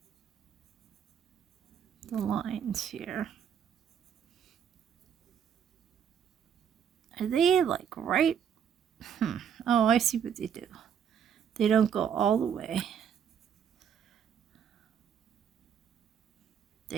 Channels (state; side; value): quieter; left; 8.2 dB